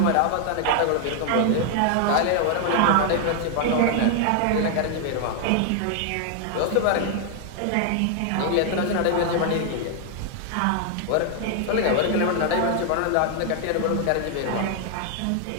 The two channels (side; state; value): both; different; correlation 0.00